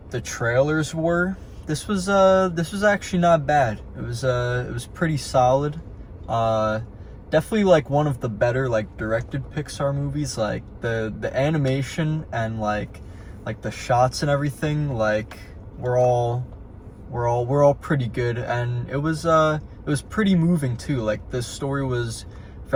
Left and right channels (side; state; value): both; identical; correlation 1.00